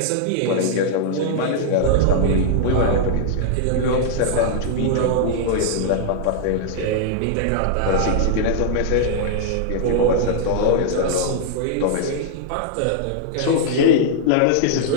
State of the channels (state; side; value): different; both; correlation -0.01